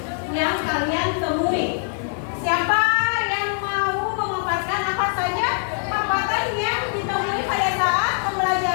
yang kalian temui. Siapa yang mau memaparkan apa saja hambatan yang ditemui pada saat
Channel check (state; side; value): silent; right; digital silence